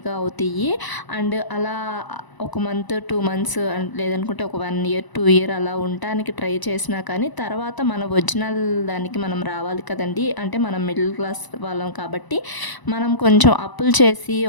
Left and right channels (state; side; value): late; right; 1.0 ms